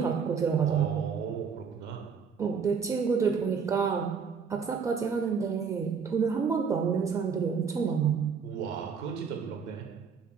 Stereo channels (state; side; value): quieter; left; 6.1 dB